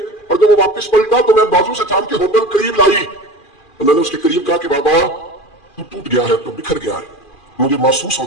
اور جب وہ واپس پلٹا تو میں بازو سے تھام کے ہوٹل قریب لائی، تو میں نے اس کے قریب کہا کہ بابا تو ٹوٹ گیا ہے، تو بکھر گیا ہے، مجھے محسوس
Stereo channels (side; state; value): right; late; 2.4 ms